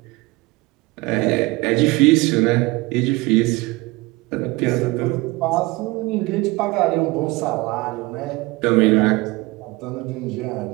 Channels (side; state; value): left; quieter; 22.5 dB